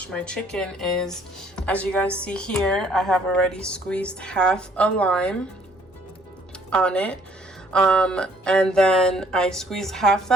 my chicken is, as you guys see here, I have already squeezed half a lime on it. And then I squeeze half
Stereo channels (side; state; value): both; normal; correlation 0.61